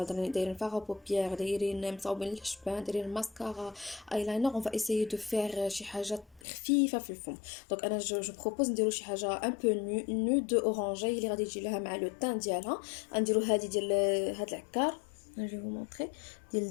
دايرين فاغا بوبيير دايرين مصاوبين الحشبان دايرين الماسكارا ايلاينر. اون فا ايسيي دو فير شي حاجه خفيفه في الفم. دونك انا جو بروبوز نديرو شي حاجه ان بو نود اورانجي اللي غادي تجي لها مع لو تان ديالها. غنديرو هذه ديال هاد العكار. Je vais vous montrer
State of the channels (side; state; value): right; drops out; at 6.5 s